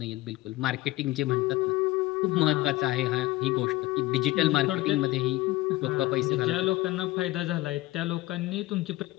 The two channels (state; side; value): quieter; right; 18.1 dB